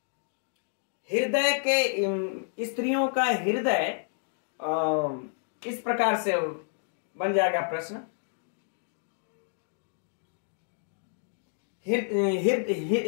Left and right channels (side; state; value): right; silent; digital silence